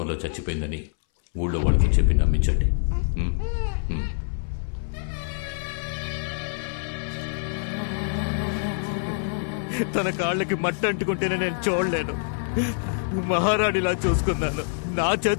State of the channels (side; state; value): right; silent; 61 dB below the other